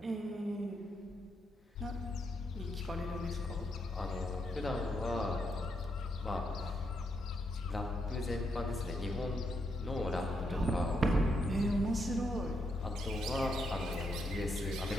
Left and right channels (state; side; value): normal; both; correlation 0.79